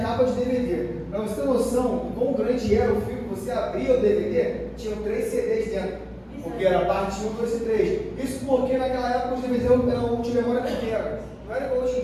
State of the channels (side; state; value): both; identical; correlation 1.00